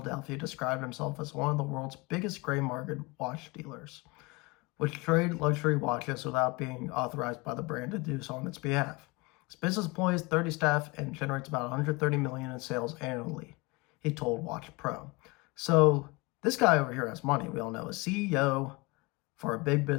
described himself as one of the world's biggest gray market watch dealers, which trade luxury watches without being authorized by the brand to do so on its behalf. His business employs 30 staff and generates about $130 million in sales annually, he told Watch Pro. So this guy over here has money. We all know, a CEO for a big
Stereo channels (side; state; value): right; quieter; 25.4 dB